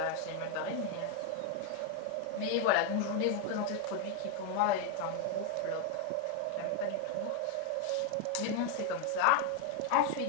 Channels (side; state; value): both; different; correlation 0.01